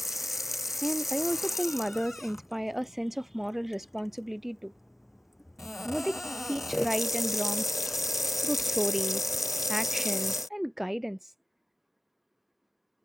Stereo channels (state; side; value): normal; both; correlation 0.94